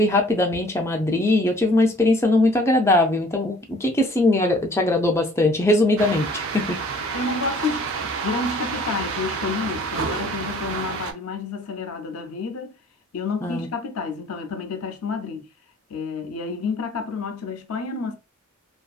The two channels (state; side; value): normal; both; correlation 0.54